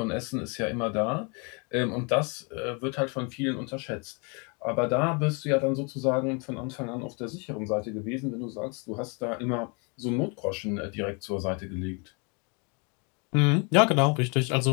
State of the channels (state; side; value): quieter; right; 33.4 dB